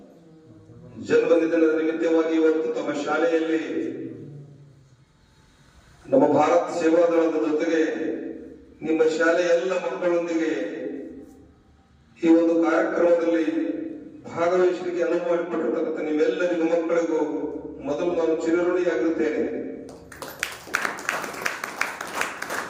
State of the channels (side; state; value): both; identical; correlation 1.00